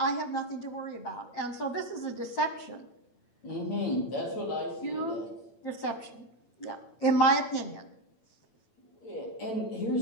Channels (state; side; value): late; right; 8.8 ms